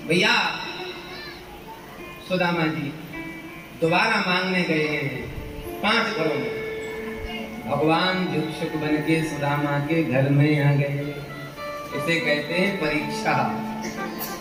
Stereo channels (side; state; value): both; identical; correlation 1.00